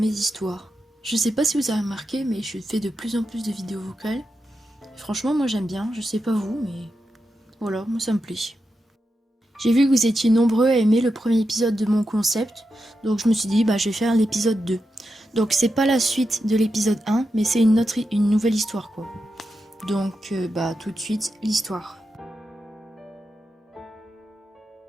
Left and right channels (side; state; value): both; normal; correlation 0.88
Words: histoires. Je sais pas si vous avez remarqué, mais je fais de plus en plus de vidéos vocales. Franchement, moi j'aime bien, je sais pas vous, mais voilà, moi ça me plaît. J'ai vu que vous étiez nombreux à aimer le premier épisode de mon concept, donc je me suis dit, je vais faire l'épisode 2. Donc c'est pas la suite de l'épisode 1, mais c'est une nouvelle histoire quoi. Donc tout de suite, l'histoire.